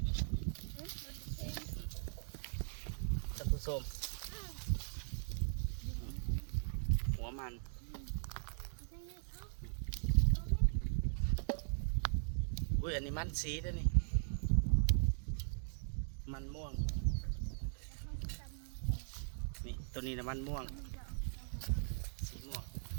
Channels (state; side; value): silent; left; digital silence